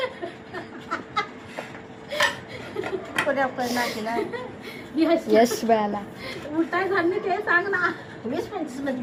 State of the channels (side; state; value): both; identical; correlation 1.00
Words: यश बयाला उठाय झाली ते सांग ना. 20-25 मध्ये